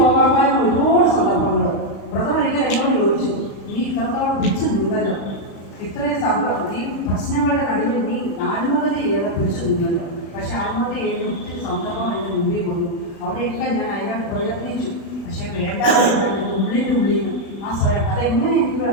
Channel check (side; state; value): right; late; 36 ms